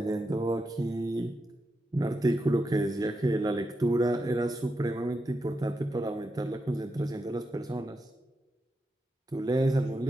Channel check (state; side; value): normal; both; correlation 0.86